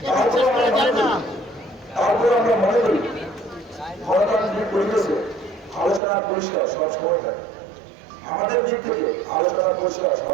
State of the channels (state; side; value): drops out; left; at 6.0 s